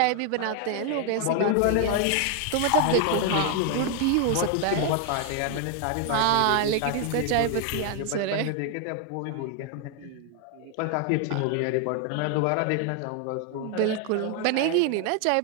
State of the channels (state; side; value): different; both; correlation 0.00